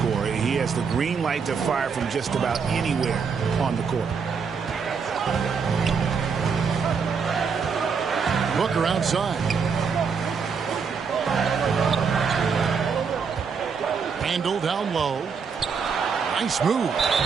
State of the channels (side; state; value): left; quieter; 5.8 dB